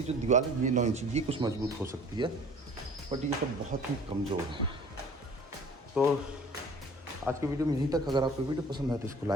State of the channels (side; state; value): both; normal; correlation 0.48